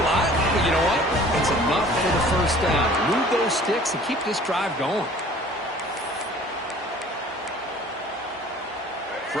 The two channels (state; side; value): normal; both; correlation 0.49